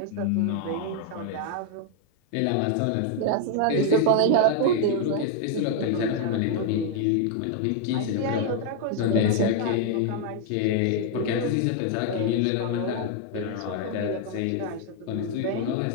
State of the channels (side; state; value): both; different; correlation 0.00